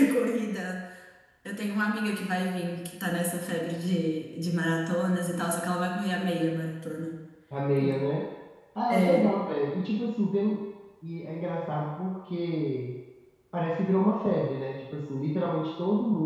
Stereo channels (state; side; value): identical; both; correlation 1.00